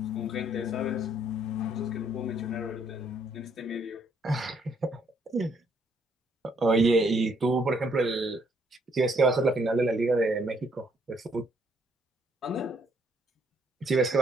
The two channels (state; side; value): normal; both; correlation 0.69